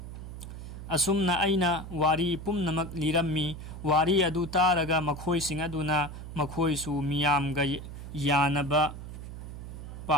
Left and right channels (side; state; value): right; noise; hum, 10 dB below the sound